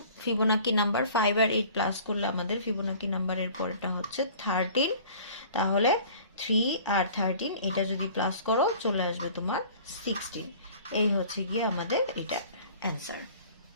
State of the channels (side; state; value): both; inverted; correlation -0.48